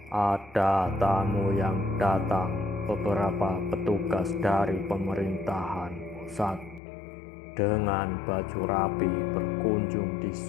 Ada tamu yang datang. Beberapa petugas dari pemerintahan pusat dengan baju rapi berkunjung di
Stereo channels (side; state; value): right; drops out; at 6.8 s